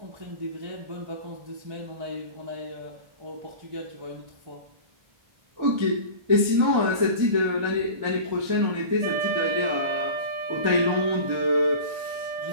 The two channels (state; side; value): late; left; 1.3 ms